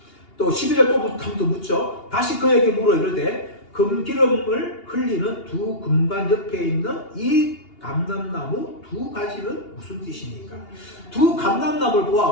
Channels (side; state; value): right; late; 2.8 ms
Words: 또 12절 또 묻죠. 다시 그에게 물어 이르되 금기름을 흘리는 두 금관 옆에 있는 이 감람나무 두 가지는 무슨 뜻입니까? 두 감람나무를